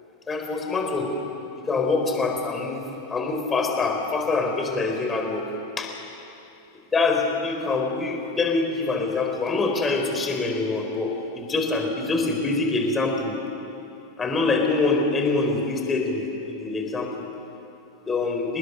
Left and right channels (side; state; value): right; quieter; 3.1 dB